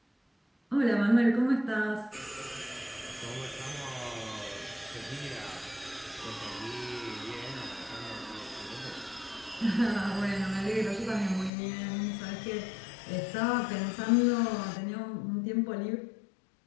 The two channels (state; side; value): drops out; right; at 11.5 s